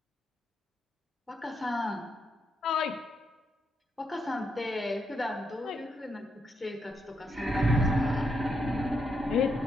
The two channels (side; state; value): both; normal; correlation 0.80